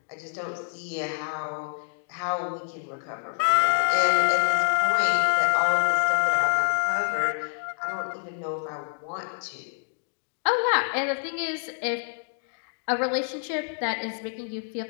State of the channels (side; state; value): right; silent; digital silence